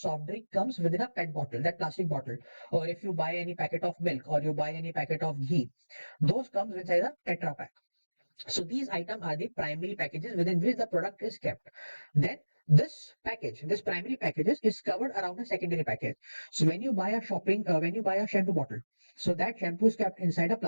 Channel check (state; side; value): inverted; both; correlation -1.00